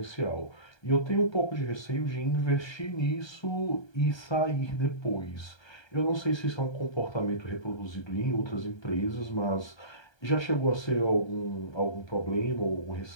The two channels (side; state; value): right; late; 1.3 ms